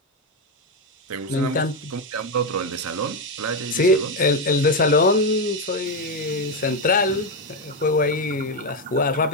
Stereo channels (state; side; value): normal; both; correlation 0.07